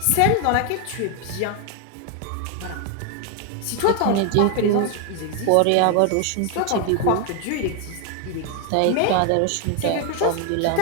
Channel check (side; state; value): both; different; correlation 0.01